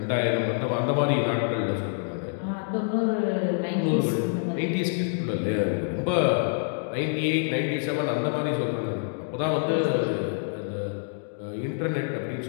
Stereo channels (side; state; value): right; silent; digital silence